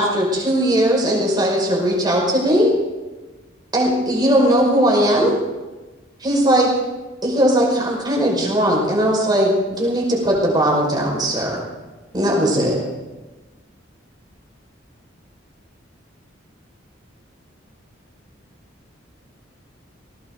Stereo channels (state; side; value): normal; both; correlation 0.53